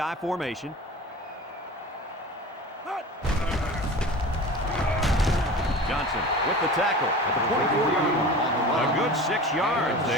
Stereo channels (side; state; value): both; normal; correlation 0.36